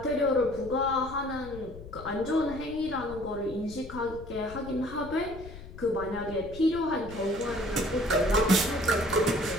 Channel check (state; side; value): noise; left; rumble, 15 dB below the sound